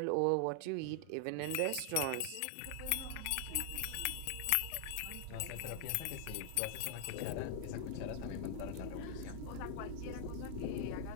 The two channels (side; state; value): both; different; correlation 0.00